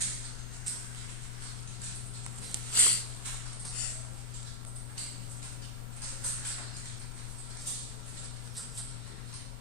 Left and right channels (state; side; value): noise; left; hum, 24 dB below the sound